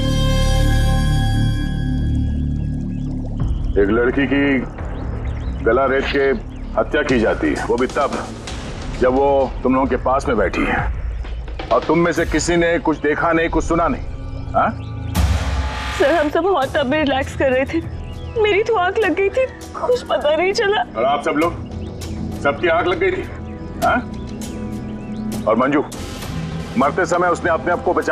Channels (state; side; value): identical; both; correlation 1.00